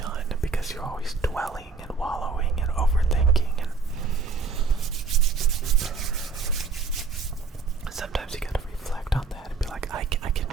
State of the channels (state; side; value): quieter; left; 4.6 dB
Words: because you're always dwelling